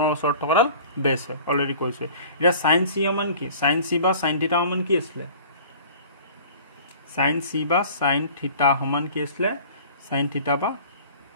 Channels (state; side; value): inverted; both; correlation -0.45